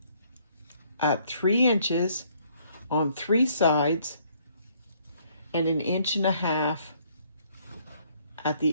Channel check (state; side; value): inverted; both; correlation -0.65